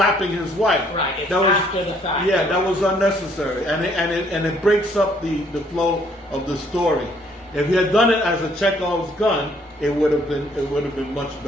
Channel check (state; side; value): normal; both; correlation 0.64